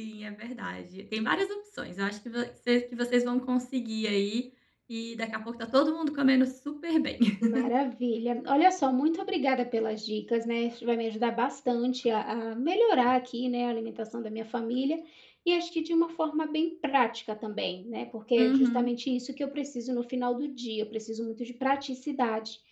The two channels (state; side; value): identical; both; correlation 1.00